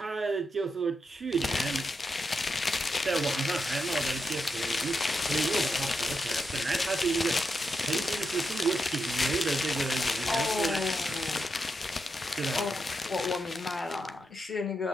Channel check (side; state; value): both; normal; correlation 0.85